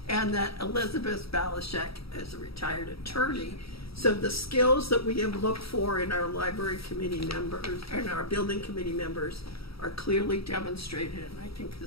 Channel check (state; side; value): late; right; 0.76 ms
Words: and that Elizabeth Balashek is a retired attorney. So the skills that we have looked for in our library committee members and our building committee members are clearly demonstrated, and I think